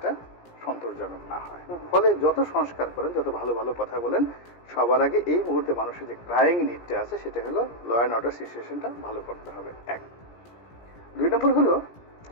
সন্তোষজনক না হয়। ফলে যত সংস্কার করেন, যত ভালো ভালো কথা বলেন, সবার আগে এই মুহূর্তে মানুষের যে ক্রাইং নিডটা আছে সেটা হলো ল অ্যান্ড অর্ডার সিচুয়েশনটা ভালো করতে হবে। 1। 2 নম্বর হলো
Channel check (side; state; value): right; late; 17 ms